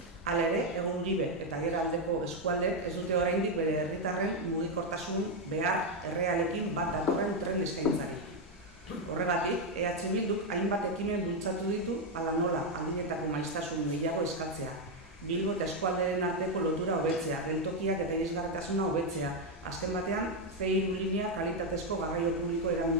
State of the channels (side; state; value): both; normal; correlation 0.04